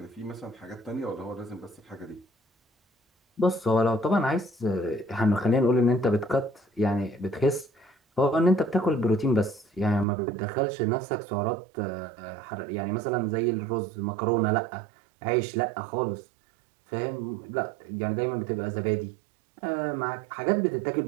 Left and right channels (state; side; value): drops out; left; at 10.1 s